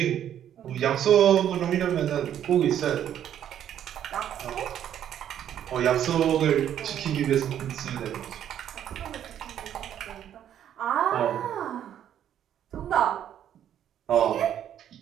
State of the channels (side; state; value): left; quieter; 10.3 dB